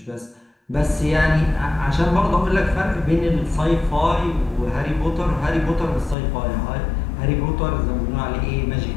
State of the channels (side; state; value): right; drops out; at 6.2 s